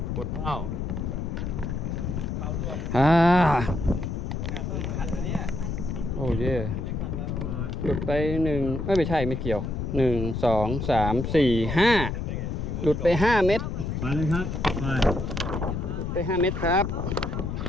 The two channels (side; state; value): left; noise; rumble, 3 dB below the sound